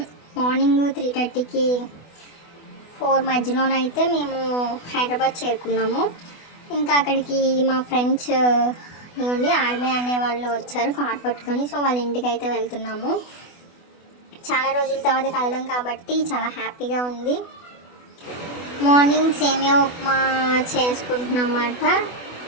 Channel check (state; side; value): late; right; 24 ms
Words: మార్నింగ్ 3:30కి 4 మధ్యలోనైతే మేము హైదరాబాద్ చేరుకున్నాము. ఇంకా అక్కడికి మా ఫ్రెండ్స్ ఇవ్వండి ఆర్మీ అనే వాళ్ళు వచ్చారు కార్ పట్టుకొని. సో వాళ్ళ ఇంటికి అయితే వెళ్తున్నాము. చాలా రోజుల తర్వాత కలడం కాబట్టి చాలా హ్యాపీగా ఉంది. మార్నింగ్ సేమియా ఉప్మా చేసుకుంటున్నమాట.